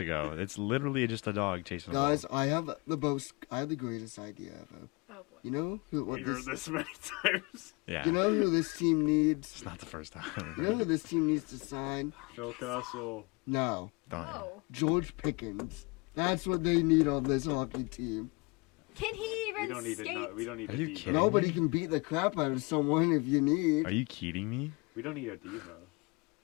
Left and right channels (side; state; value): right; quieter; 27.9 dB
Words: It's literally just a dog chasing a ball. Guys, I have the greatest idea ever. Oh boy. You know who? We've heard this many times. Yeah. You know who this team needs? It's not the first You know time. who this team needs to sign? Phil Kessel. No, Don't. Oh, George Pickens. That's what they need on this hockey team. can he even We don't need skate? to know. We don't need Are a you diva. kidding? Nobody can beat the crap out of someone if you need. Are you kidding me? We don't need a diva.